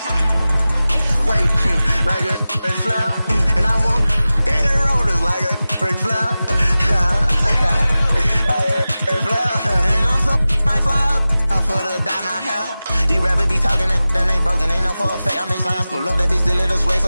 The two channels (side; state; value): both; inverted; correlation -0.96